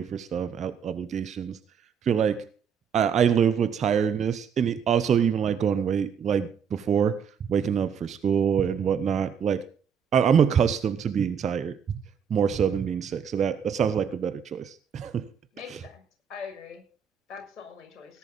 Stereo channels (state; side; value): quieter; left; 7.4 dB